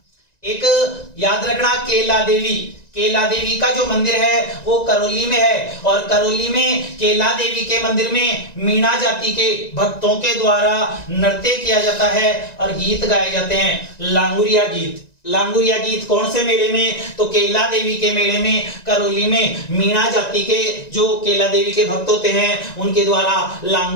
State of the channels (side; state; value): right; late; 1.9 ms